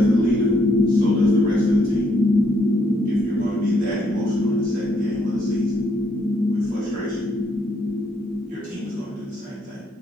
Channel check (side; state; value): both; normal; correlation 0.72